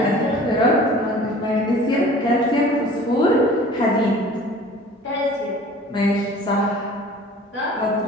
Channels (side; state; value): both; normal; correlation 0.46